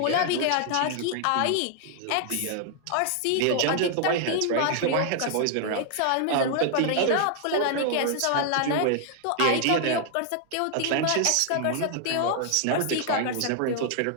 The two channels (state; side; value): different; both; correlation 0.00